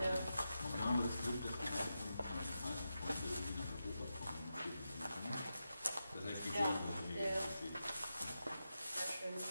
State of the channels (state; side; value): inverted; both; correlation -0.89